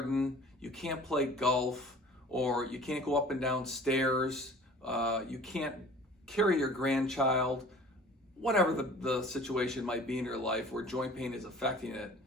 you can't play golf, or you can't go up and down stairs, you can't carry your grandchild, whatever the situation might be in your life where joint pain is affecting it,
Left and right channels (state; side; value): normal; both; correlation 0.46